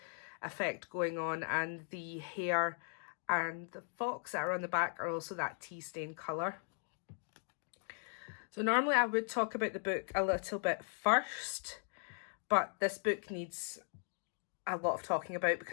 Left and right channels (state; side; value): silent; right; 52 dB below the other